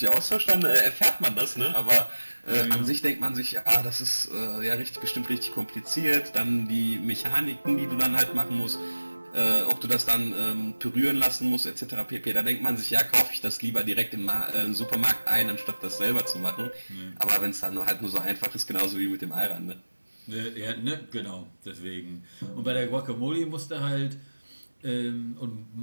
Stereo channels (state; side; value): inverted; both; correlation -1.00